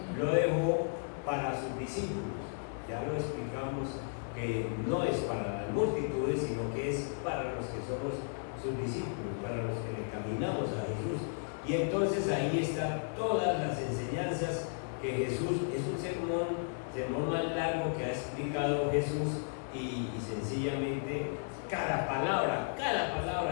lo dejó para sus discípulos. Ya lo explicamos que no es para las multitudes, sino que es para los que somos sus discípulos, para los que le caminamos a Jesús. Y entonces ahí están todas las enseñanzas que Jesús, es un sermón más largo que ha explicado Jesús, y sencillamente cada palabra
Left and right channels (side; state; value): right; silent; digital silence